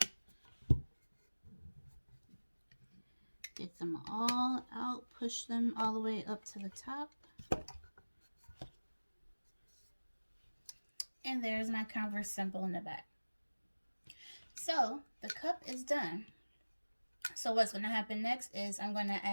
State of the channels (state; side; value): inverted; both; correlation -1.00